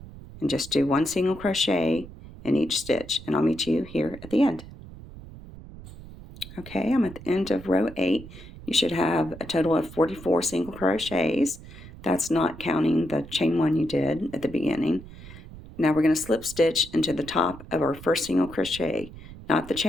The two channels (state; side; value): noise; right; rumble, 16 dB below the sound